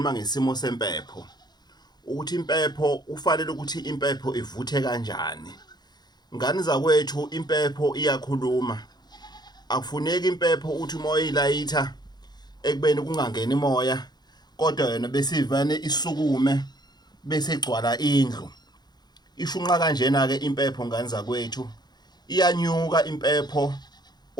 ngesimo sempepho. Ukuthi impepho ufanele ukuthi impepho ivuthe kanjani. Ngani zakwethu impepho iyakhuluma. Akufuneki impepho uthi umoya ilayitha ekubeni kungangeni imoya kodwa yena besivane isukume bese igcwala indlu. Ishunqa kanjena ke impepho ngani zakwethu iyanyuka impepho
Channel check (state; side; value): late; right; 0.20 ms